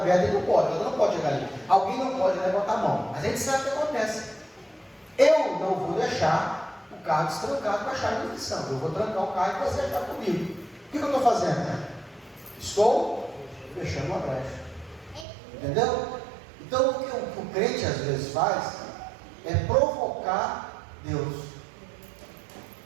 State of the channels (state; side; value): drops out; left; at 15.2 s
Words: ele não pode chegar ali. Alguém não pode levantar a mão, mas a gente sabe o que acontece. Eu não vou deixar o carro destrancado com a chave de ignição. Eu vou trancar o carro e você achar comigo. O que eu estou fazendo? Estou fechando uma brecha. Entendeu? Então o que o crente às vezes faz é provocar Deus.